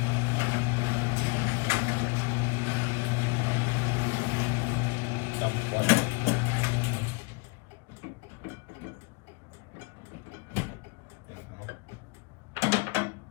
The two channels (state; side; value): quieter; right; 29.2 dB